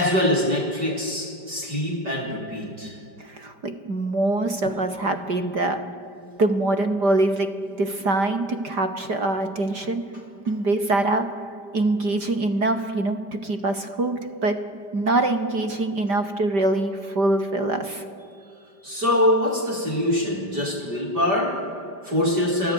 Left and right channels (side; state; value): left; late; 5.1 ms